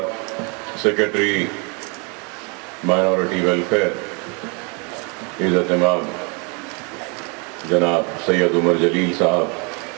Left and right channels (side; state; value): left; quieter; 32.8 dB